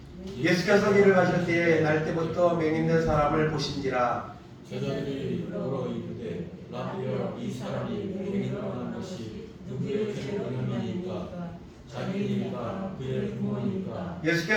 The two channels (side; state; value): both; identical; correlation 1.00